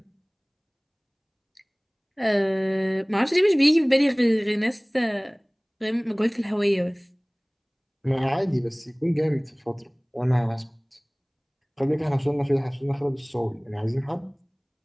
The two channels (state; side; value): identical; both; correlation 1.00